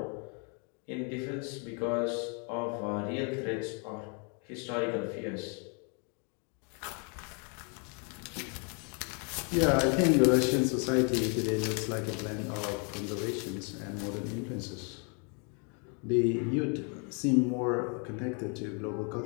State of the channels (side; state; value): right; quieter; 37.6 dB